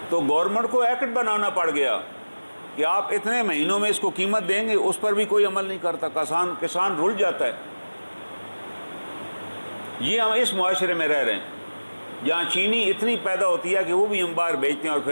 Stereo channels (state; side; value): inverted; both; correlation -1.00